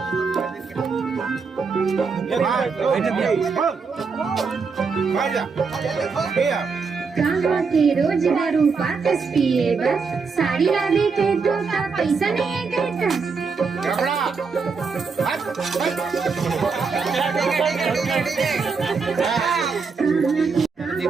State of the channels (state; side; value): quieter; left; 5.0 dB